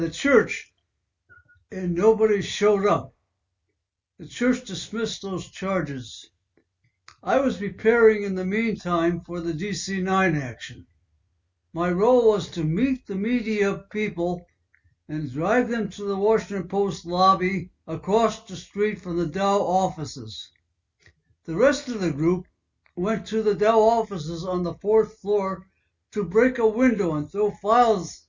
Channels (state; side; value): identical; both; correlation 1.00